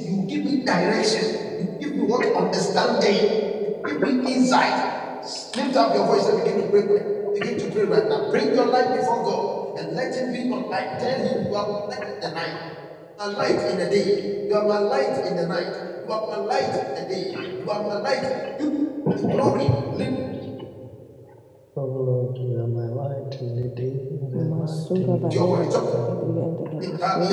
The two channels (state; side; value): identical; both; correlation 1.00